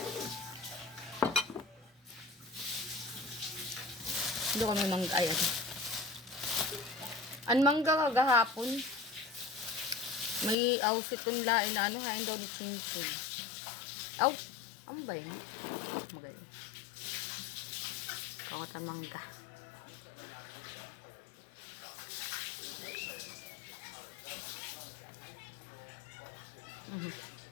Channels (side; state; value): right; drops out; at 10.6 s